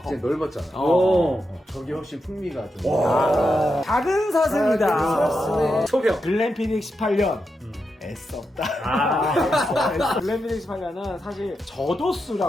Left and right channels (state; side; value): normal; both; correlation 0.86